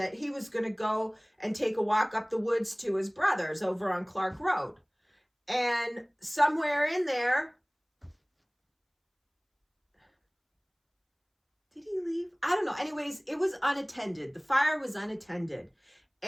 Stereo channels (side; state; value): both; identical; correlation 1.00